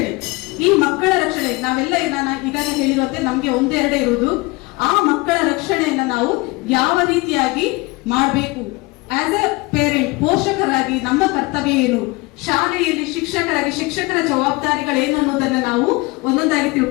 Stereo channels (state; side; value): quieter; right; 23.9 dB